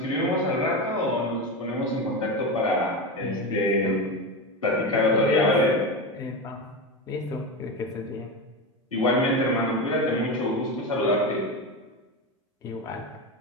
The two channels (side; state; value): both; normal; correlation 0.19